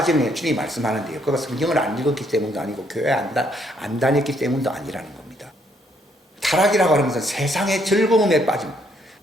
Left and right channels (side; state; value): both; normal; correlation 0.70